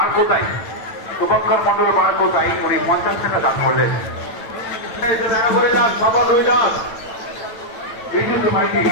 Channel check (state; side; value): late; right; 9.0 ms